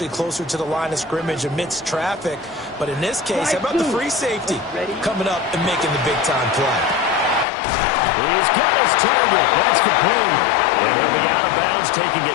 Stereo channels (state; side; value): drops out; right; at 7.5 s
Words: closer to the line of scrimmage amidst traffic. But in this case, how about the free safety coming up and making the big-time play? He's got his target. That's complete. And he'll be out of bounds, taking it